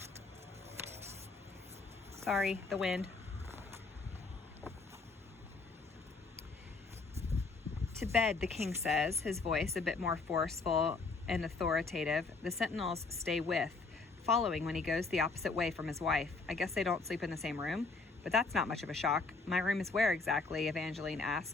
Sorry, the wind. To bed, the king says, his voice a bit more forceful and authoritative. The sentinels stay with, following when he goes the opposite way from his wife. I guess they don't sleep in the same room, but that's not much of a shock. My room is where exactly? Evangeline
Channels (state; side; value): quieter; right; 3.9 dB